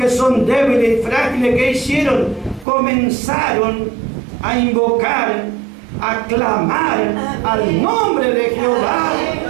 son débiles y frágiles, ¿qué hicieron? Comenzaron a invocar, a clamar al nombre de Jehová,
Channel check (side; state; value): left; drops out; at 2.7 s